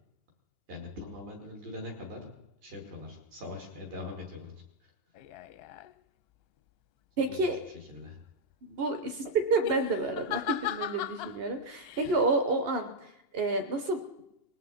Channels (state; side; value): late; left; 2.8 ms